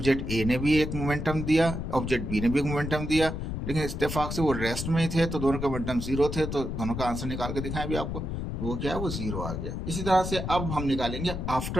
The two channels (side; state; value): left; noise; rumble, 4 dB below the sound